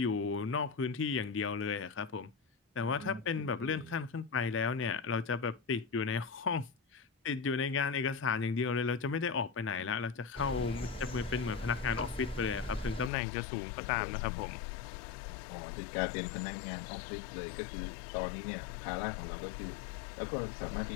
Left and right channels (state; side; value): drops out; right; at 13.1 s